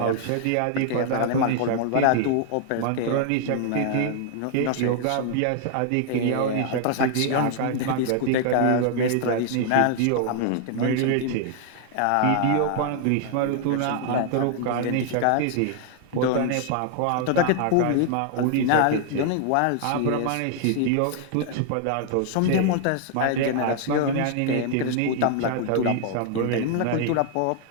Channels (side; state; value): both; different; correlation 0.00